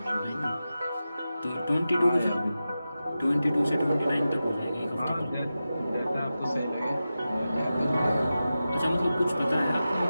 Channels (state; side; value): inverted; both; correlation -0.93